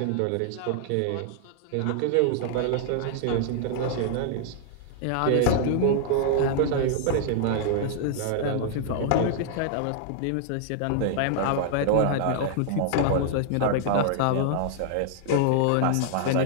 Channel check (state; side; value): different; both; correlation -0.01